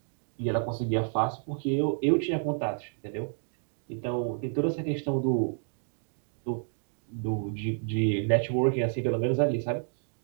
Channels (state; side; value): silent; left; 58 dB below the other